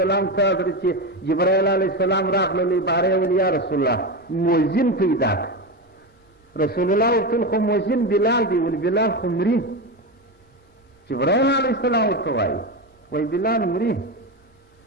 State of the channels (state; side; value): normal; both; correlation 0.17